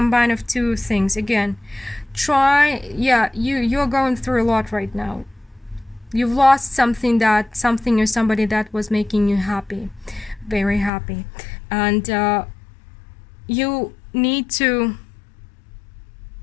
of two things. Again, you're going through a lot right now. You've lost something or somebody that was making you happy, very happy, and you need to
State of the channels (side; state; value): right; drops out; at 10.9 s